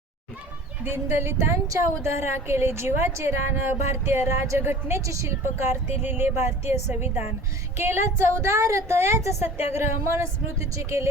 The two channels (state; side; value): normal; both; correlation 0.42